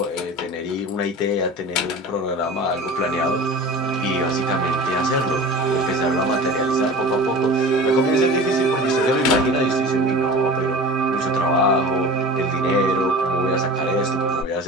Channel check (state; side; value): normal; both; correlation 0.37